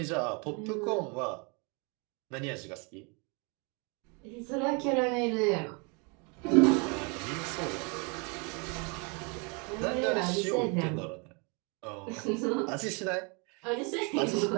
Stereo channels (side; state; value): left; quieter; 32.8 dB